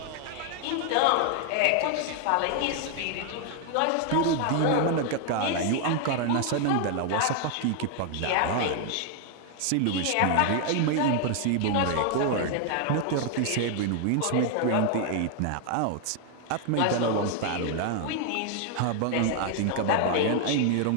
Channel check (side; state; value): both; different; correlation 0.00